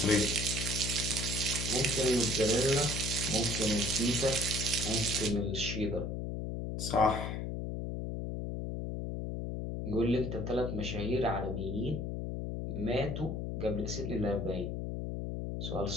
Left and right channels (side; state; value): left; noise; hum, 3 dB below the sound